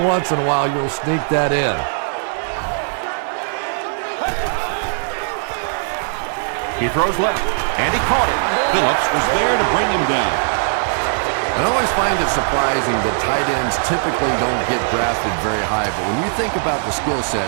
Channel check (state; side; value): silent; left; 65 dB below the other